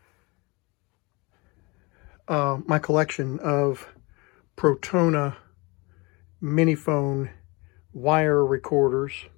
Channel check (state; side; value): quieter; right; 26.7 dB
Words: my collection of Protona Minifon wire recorders,